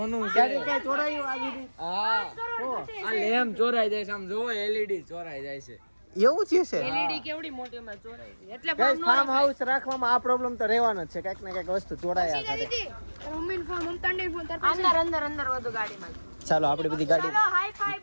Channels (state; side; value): inverted; both; correlation -1.00